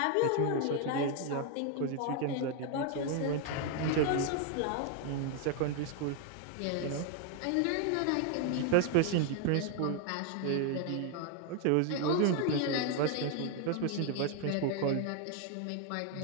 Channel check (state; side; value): different; both; correlation 0.00